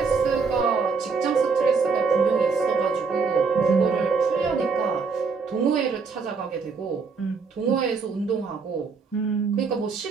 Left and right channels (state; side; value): quieter; left; 4.9 dB